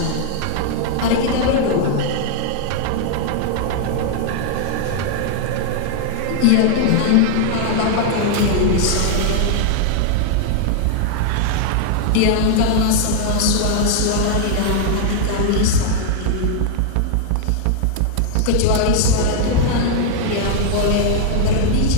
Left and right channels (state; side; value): different; both; correlation 0.00